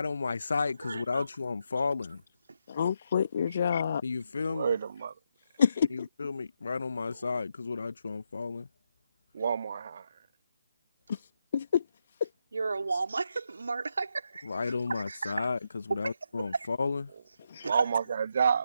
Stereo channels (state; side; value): inverted; both; correlation -0.82